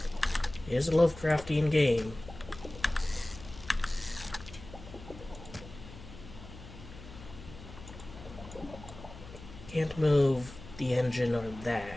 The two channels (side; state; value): left; noise; hum, 15 dB below the sound